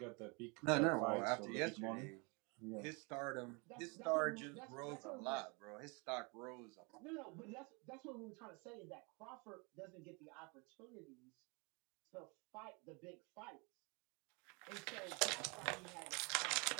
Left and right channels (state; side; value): quieter; left; 30.7 dB